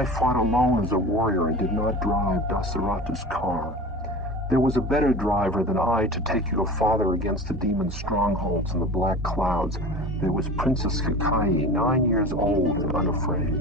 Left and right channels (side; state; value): both; normal; correlation 0.34